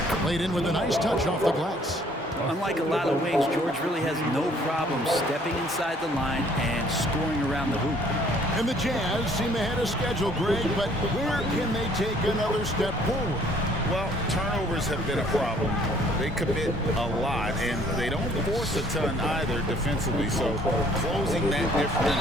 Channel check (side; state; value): both; normal; correlation 0.60